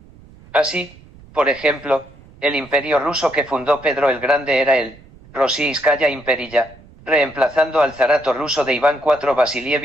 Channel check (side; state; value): right; noise; rumble, 24 dB below the sound